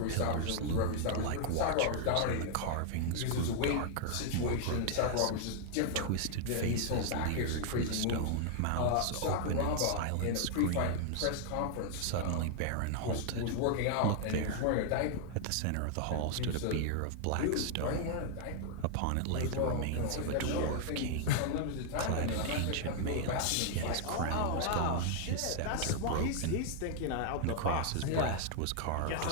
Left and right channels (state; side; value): different; both; correlation 0.00